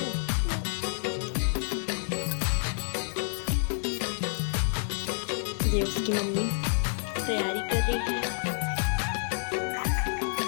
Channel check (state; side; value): silent; right; 59 dB below the other